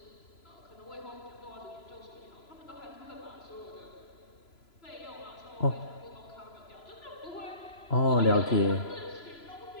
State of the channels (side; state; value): right; late; 3.0 ms